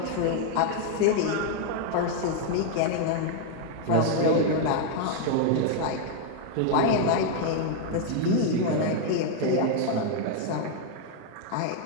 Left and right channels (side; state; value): both; different; correlation 0.00